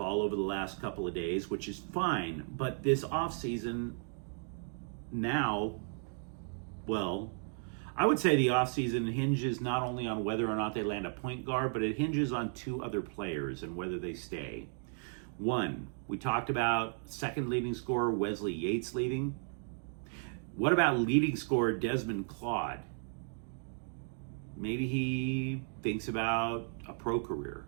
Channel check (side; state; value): left; silent; 55 dB below the other